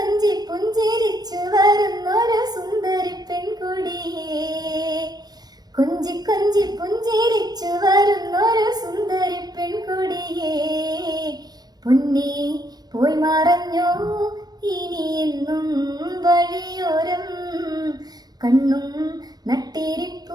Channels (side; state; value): left; late; 0.19 ms